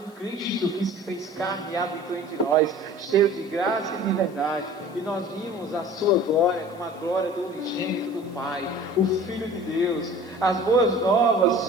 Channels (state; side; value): noise; left; hiss, 29 dB below the sound